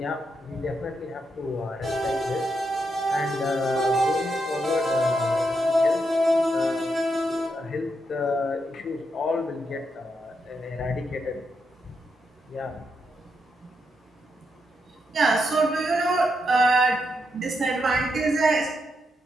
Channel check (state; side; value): normal; both; correlation 0.82